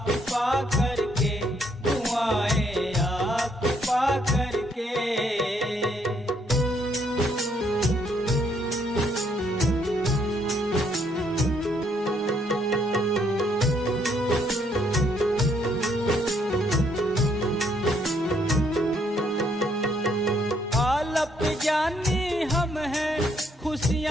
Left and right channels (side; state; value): both; normal; correlation 0.70